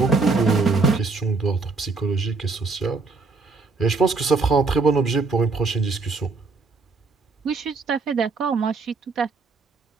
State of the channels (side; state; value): left; quieter; 4.1 dB